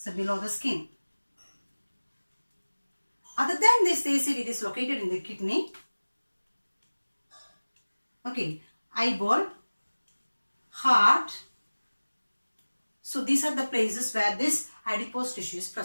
below the skin. Other than this, they said it is located in the kidney. Okay. Eyeball. Heart. So these are the places where this adipose tissue is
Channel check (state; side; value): inverted; both; correlation -1.00